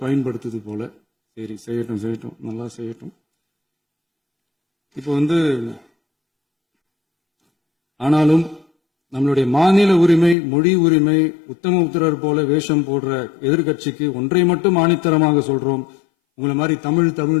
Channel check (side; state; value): right; drops out; at 10.4 s